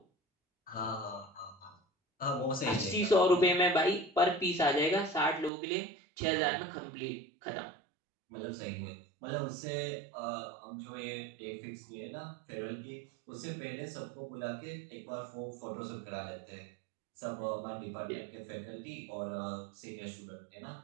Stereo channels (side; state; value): left; drops out; at 5.5 s